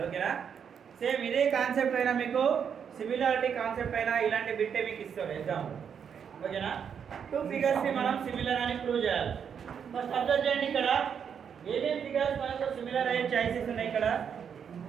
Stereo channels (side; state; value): left; quieter; 7.5 dB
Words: ఓకేనా? సేమ్ ఇదే కాన్సెప్ట్ అయినా మీకు సిమిలారిటీ కాన్సెప్ట్ అయినా ఇలాంటి బిట్టే మీకు ఇస్తాడు ఎగ్జామ్. ఓకేనా? టూ ఫిగర్స్ ని మనం సిమిలర్ అని ప్రూవ్ చేయాలి. ఫస్ట్ అబ్జర్వ్ చేయండి, ఇక్కడ ఏమేం ఫిగర్స్ మనకు సిమిలర్ అయ్యే చాయిసెస్ ఉన్నాయి. ఇక్కడ